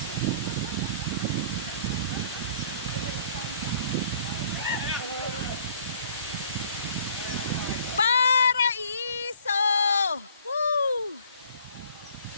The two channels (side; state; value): both; inverted; correlation -0.56